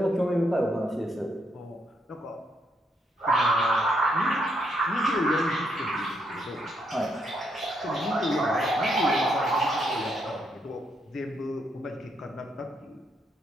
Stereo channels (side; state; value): both; normal; correlation 0.76